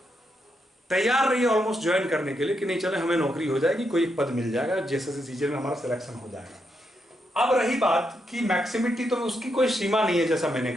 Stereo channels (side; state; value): both; normal; correlation 0.81